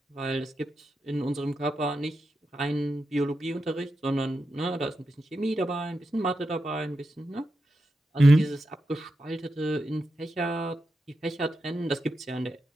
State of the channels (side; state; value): both; normal; correlation 0.88